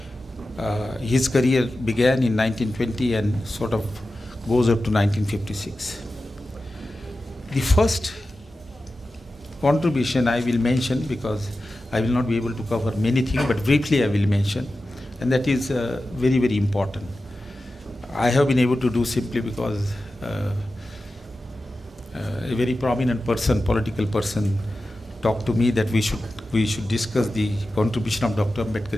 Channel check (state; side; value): normal; both; correlation 0.93